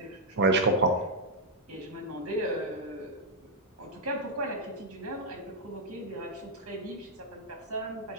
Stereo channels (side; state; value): both; normal; correlation -0.04